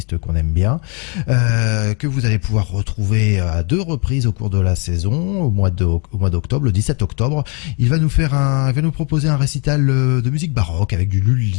qu'on aime bien, que vous allez pouvoir retrouver à 2 reprises au cours de la saison, au mois d'octobre, le 17 octobre. Il va nous proposer un récital de musique baroque avec du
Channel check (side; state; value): right; quieter; 34.6 dB